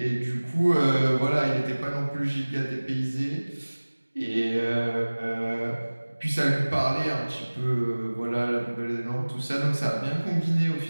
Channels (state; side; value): inverted; both; correlation -1.00